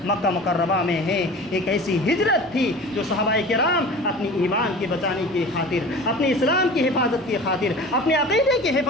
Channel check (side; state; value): both; normal; correlation 0.38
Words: مکہ مکرمہ میں ہیں۔ ایک ایسی ہجرت تھی جو صحابہ کرام اپنی ایمان کے بچانے کی خاطر، اپنے اسلام کی حفاظت کی خاطر، اپنے عقیدے کی